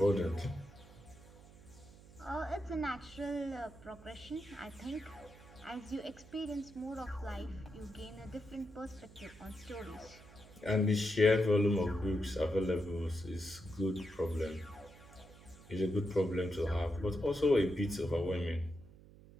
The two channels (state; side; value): noise; right; hum, 20 dB below the sound